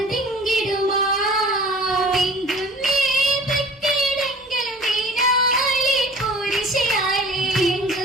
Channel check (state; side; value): normal; both; correlation 0.46